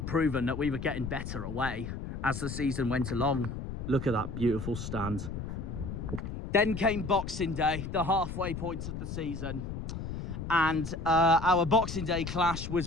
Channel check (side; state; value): left; noise; rumble, 6 dB below the sound